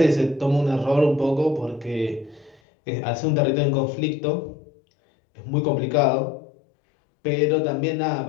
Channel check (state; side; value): drops out; right; at 2.6 s